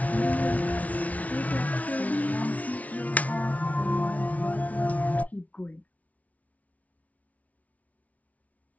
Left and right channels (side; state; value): right; late; 0.070 ms